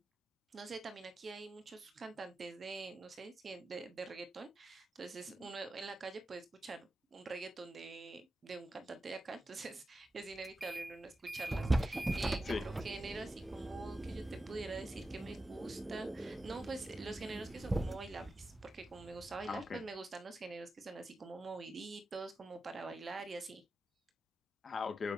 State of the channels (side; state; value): both; normal; correlation 0.91